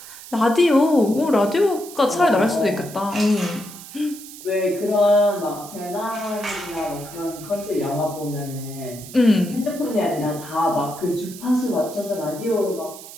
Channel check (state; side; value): noise; right; hiss, 15 dB below the sound